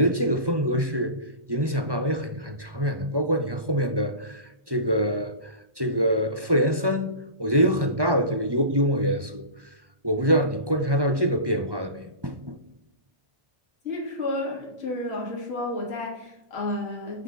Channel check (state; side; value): late; left; 1.1 ms